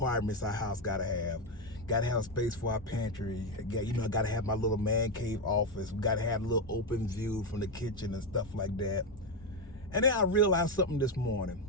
our house gotta have. Gotta have space for our pantry. Gotta have my little man cave office. We gotta have a little open view from the kitchen and stuff like that. And then I realized something this morning.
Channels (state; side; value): normal; both; correlation 0.08